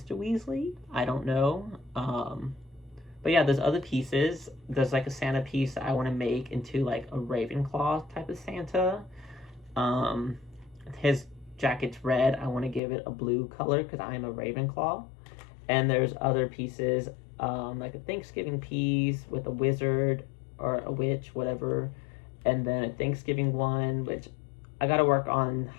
Weasley? I don't know. But yeah, there's other pieces. There's like a Santa piece that I want to make into like a Ravenclaw type of Santa. His jacket's red. I want to give it a blue color because I'm a Ravenclaw. And there's other pieces, like a Thanksgiving piece with a wizard or a witch, whatever. And then a Thanksgiving one, which I got to work on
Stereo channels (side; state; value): right; drops out; at 12.8 s